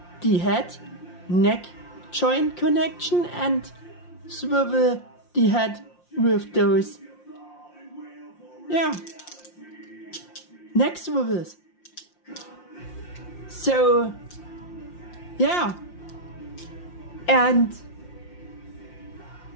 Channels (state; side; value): late; right; 5.7 ms